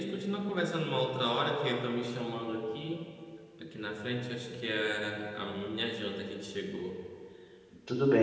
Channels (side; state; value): both; identical; correlation 1.00